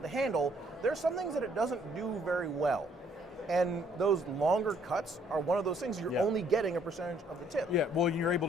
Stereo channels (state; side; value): normal; both; correlation 0.65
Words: handle, there's some things that it doesn't do very well. And those longer cuts are one of those things you're only getting a percentage of the tip. Yeah, well, you're able